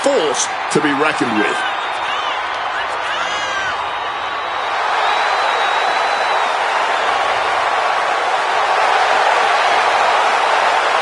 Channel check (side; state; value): both; identical; correlation 1.00